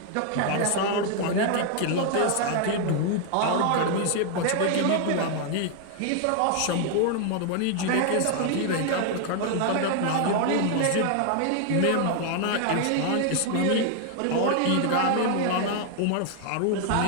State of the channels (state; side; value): different; both; correlation 0.00